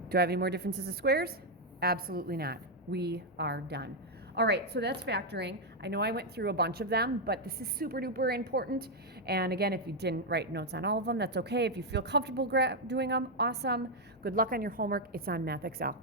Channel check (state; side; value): normal; both; correlation 0.01